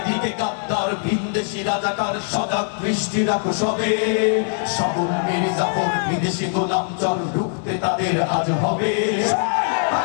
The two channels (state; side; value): silent; right; digital silence